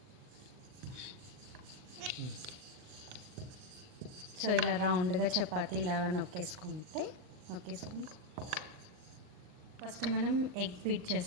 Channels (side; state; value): left; late; 39 ms